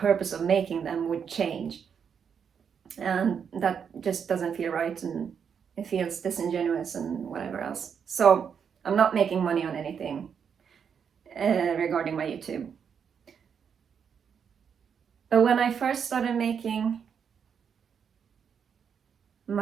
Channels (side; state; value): left; quieter; 7.2 dB